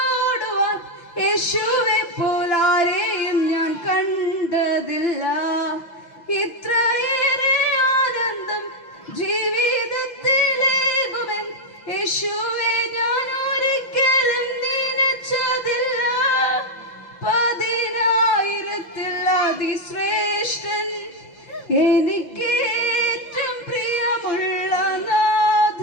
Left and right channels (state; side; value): late; right; 5.8 ms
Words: യേശുവെ പോലാരെയും ഞാൻ കണ്ടതില്ല. ഇത്രയേറെ ആനന്ദം ജീവിതത്തിലേകുമെൻ യേശുവെ ഞാൻ ഒരിക്കലും നനച്ചതില്ല. 10,000-ൽ അതിശ്രേഷ്ഠൻ എനിക്കേറ്റം പ്രിയമുള്ള